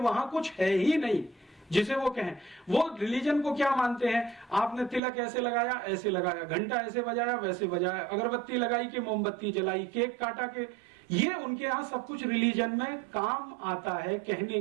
वहां कुछ है ही नहीं जिसे वो कहें। वो रिलीजन को क्या मानते हैं? आपने तिलक ऐसे लगाया, ऐसे लगाया, घंटा ऐसे बजाया, वैसे बजाया, अगरबत्ती लगाई कि मोमबत्ती जलाई, केक काटा के, ये उनके यहाँ सब कुछ रिलीजन में काम आता है कहने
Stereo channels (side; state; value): left; drops out; at 5.0 s